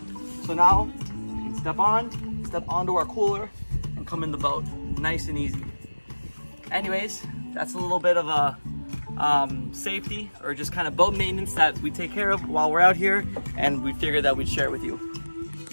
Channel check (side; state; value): both; inverted; correlation -1.00